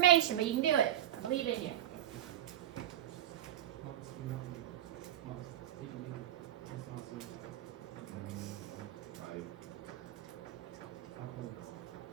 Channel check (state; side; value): quieter; left; 12.5 dB